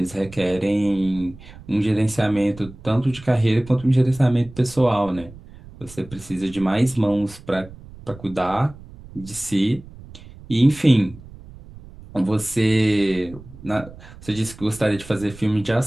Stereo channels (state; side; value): noise; right; rumble, 18 dB below the sound